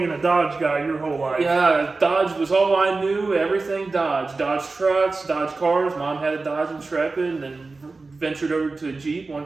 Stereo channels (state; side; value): quieter; left; 3.8 dB